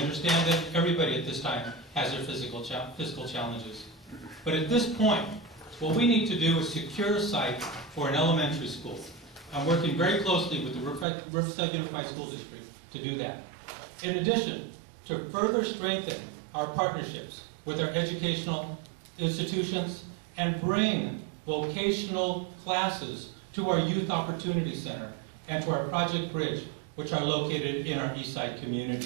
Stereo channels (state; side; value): drops out; left; at 11.1 s